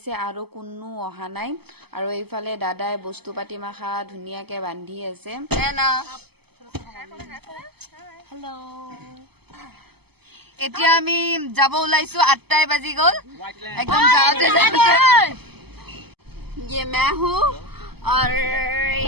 আৰু কোনো অহা নাই। আৰু এইফালে দাদাই বস্তু পাতি মাখা ধুনীয়াকে বান্ধি আছে। হেল্ল', এতিয়া আমি যাব ওলাইছো। 8টাই বাজি গ'ল। একদম যাওঁতে ये मैं हूँ और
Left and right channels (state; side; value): late; left; 0.97 ms